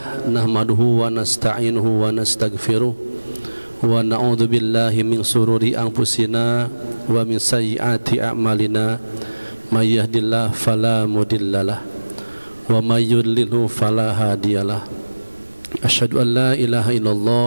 nahmaduhu wa nasta'inuhu wa nastaghfiruh wa na'udzu billahi min shururi anfusina wa min sayyiati a'malina may yahdihillahu fala mudhillalah wa may yudlilhu fala hadiyalah. Asyhadu an la ilaha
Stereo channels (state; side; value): inverted; both; correlation -1.00